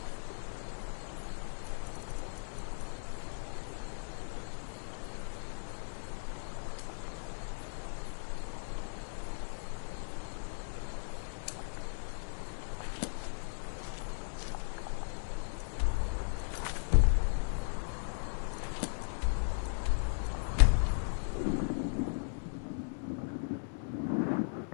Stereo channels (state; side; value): silent; right; digital silence